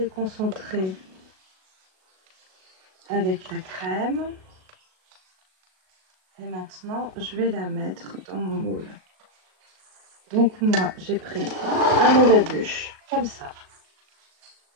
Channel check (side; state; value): left; late; 37 ms